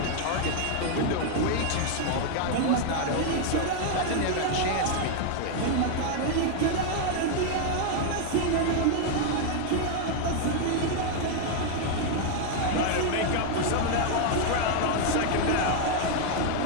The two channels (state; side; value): different; both; correlation 0.00